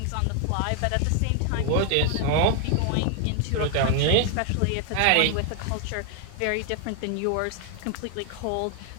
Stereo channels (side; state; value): both; different; correlation 0.00